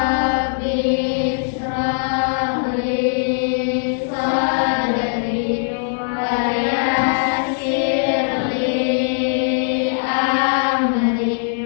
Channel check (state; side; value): silent; right; 65 dB below the other